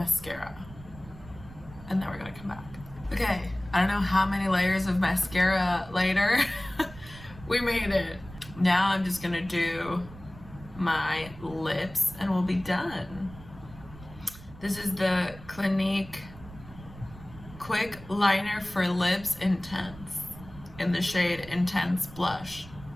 and then we're gonna come back. Okay, I don't know how many layers of mascara later. We made it. Now I'm just gonna do my lips and we'll be done. This is the Clinique Quick Liner for Lips Intense in the shade Intense Blush.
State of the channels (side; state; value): right; noise; rumble, 18 dB below the sound